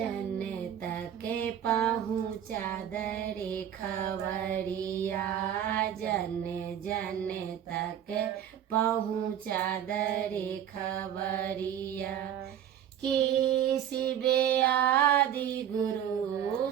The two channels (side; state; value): left; quieter; 10.0 dB